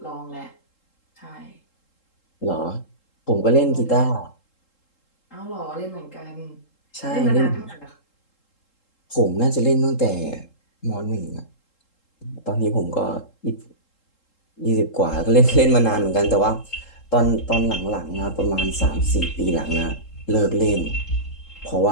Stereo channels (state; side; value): late; right; 3.7 ms